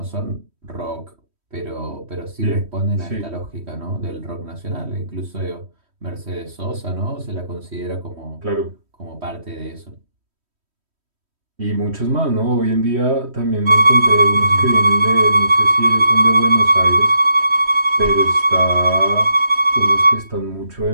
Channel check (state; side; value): late; left; 3.1 ms